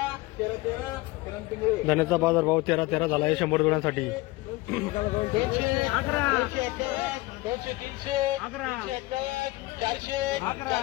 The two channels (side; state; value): right; quieter; 20.4 dB